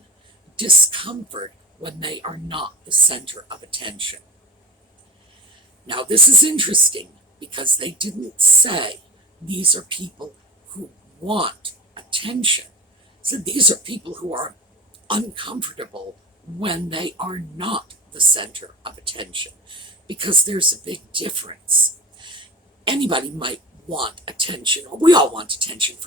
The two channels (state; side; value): normal; both; correlation 0.33